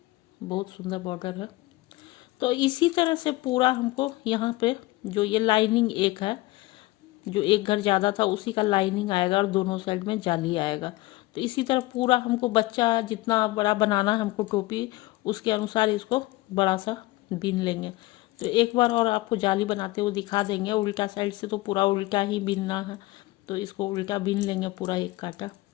बहुत सुंदर बॉर्डर है। तो इसी तरह से पूरा हमको यहाँ पे जो ये लाइनिंग एक है, जो एक घर ज़्यादा था उसी का लाइनिंग आएगा और दोनों साइड में जाली आएगा। तो इसी तरह पूरा हमको बच्चा जितना बड़ा बनाना है हमको टोपी, उसके अनुसार इसको बड़ा सा बीन लेंगे। तो एक बार और आपको जाली बनाते हुए दिखा देंगे। उल्टा साइड से तो पूरा उल्टा ही बीनना है, तो इसको उल्टा बीन लेंगे पूरा एक कांटा।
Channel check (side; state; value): right; quieter; 19.9 dB